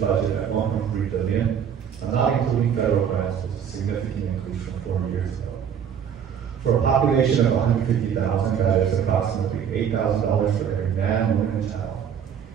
at $1.3 billion, not including federal grants, was a significant increase from 4 years ago. For a population of 150,000, that is approximately $8,000 for every man, woman, and child.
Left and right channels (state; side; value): quieter; left; 8.2 dB